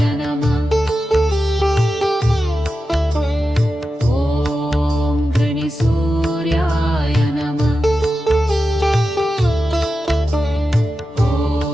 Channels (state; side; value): normal; both; correlation 0.91